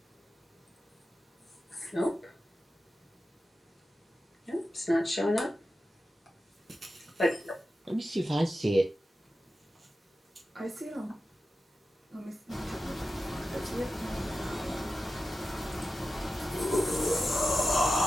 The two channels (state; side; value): normal; both; correlation 0.92